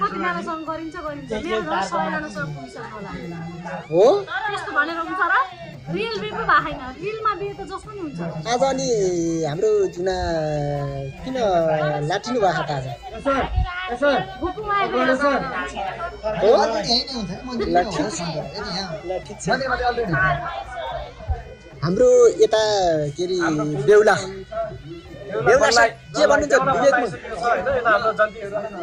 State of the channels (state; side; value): identical; both; correlation 1.00